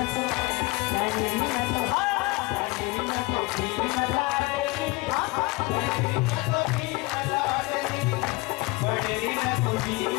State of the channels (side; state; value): right; quieter; 24.3 dB